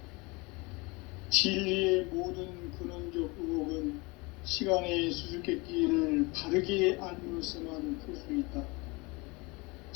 진리의 모든 근원적 의혹은 시간의 수수께끼를 바르게 알므로서만 풀 수 있다.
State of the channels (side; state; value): right; quieter; 26.0 dB